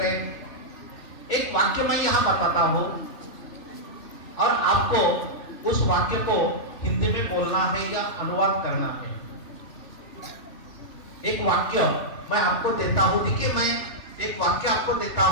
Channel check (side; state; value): right; late; 3.1 ms